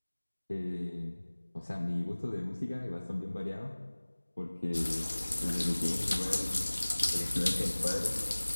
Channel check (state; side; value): inverted; both; correlation -1.00